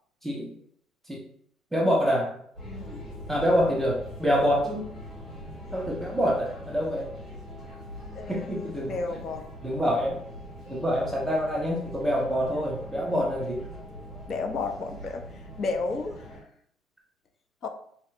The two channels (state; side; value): normal; both; correlation 0.77